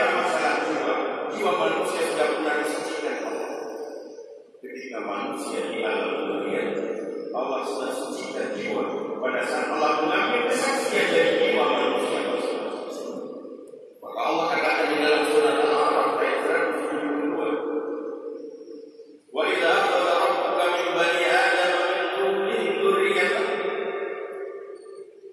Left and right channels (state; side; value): identical; both; correlation 1.00